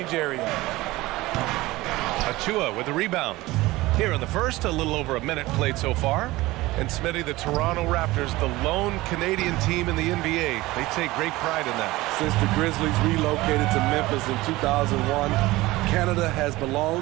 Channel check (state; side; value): quieter; left; 19.3 dB